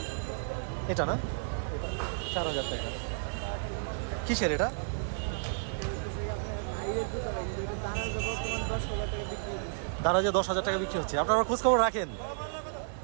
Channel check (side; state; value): left; silent; digital silence